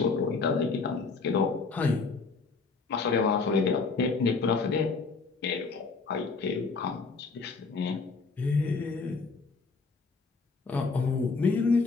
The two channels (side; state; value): right; quieter; 4.4 dB